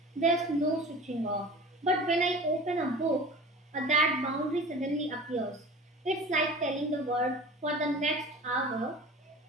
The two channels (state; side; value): normal; both; correlation 0.38